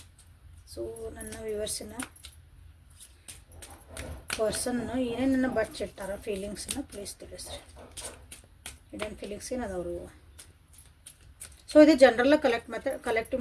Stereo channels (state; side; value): identical; both; correlation 1.00